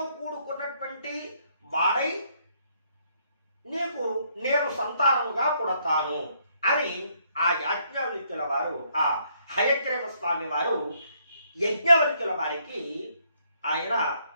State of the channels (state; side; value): inverted; both; correlation -0.70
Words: కూడుకున్నటువంటి వాడై నీకు నేను సంతానముగా పుడతాను అని ఆ యాజ్ఞవల్క్యుల వారు, ఆ హయగ్రీవ స్వామి వారు యజ్ఞవల్క్యుల వారికి ఆయన